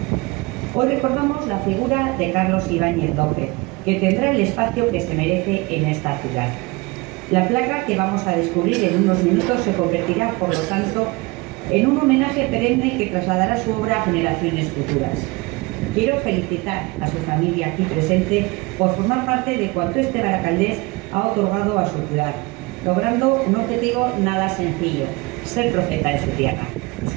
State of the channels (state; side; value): quieter; left; 24.8 dB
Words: Hoy recordamos la figura de Carlos Ibáñez López, que tendrá el espacio que se merece en esta ciudad. La placa que vamos a descubrir en unos minutos se convertirá, por lo tanto, en un homenaje perenne que trasladará su obra a generaciones futuras. Quiero felicitar a su familia aquí presente por formar parte de cuanto este baracaldés ha otorgado a su ciudad, logrando un objetivo nada sencillo: ser profeta de su tierra. Es